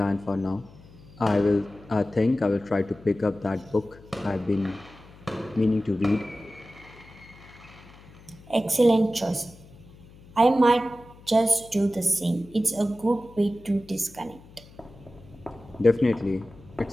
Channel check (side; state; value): left; noise; hum, 22 dB below the sound